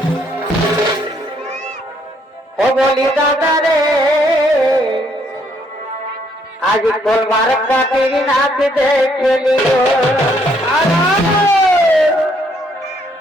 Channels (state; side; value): normal; both; correlation 0.69